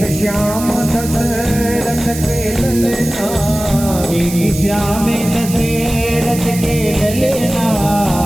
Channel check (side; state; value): right; noise; hiss, 10 dB below the sound